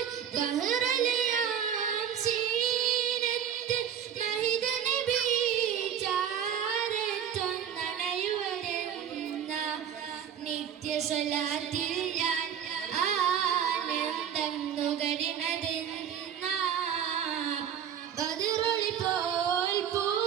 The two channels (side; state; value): left; quieter; 8.9 dB